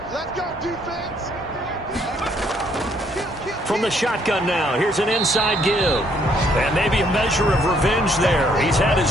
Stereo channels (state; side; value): normal; both; correlation 0.67